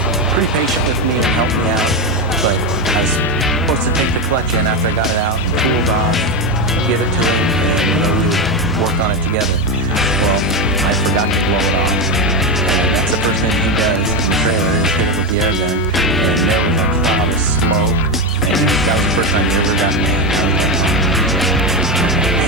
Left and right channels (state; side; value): normal; both; correlation 0.13